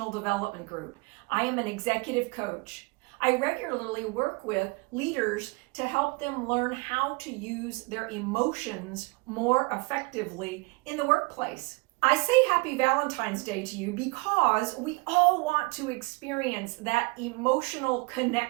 Development Group. I am an executive coach. I regularly work with leaders to help them learn how to use their emotions more effectively in the workplace. I say Happy Valentine's Day to you because we all want to experience that emotional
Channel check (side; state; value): left; quieter; 27.5 dB